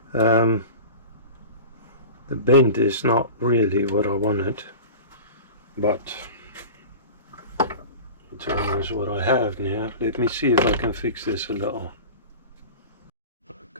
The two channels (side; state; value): both; inverted; correlation -0.34